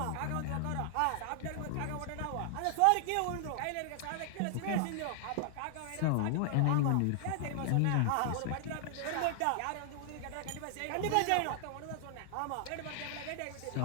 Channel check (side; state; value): both; different; correlation 0.00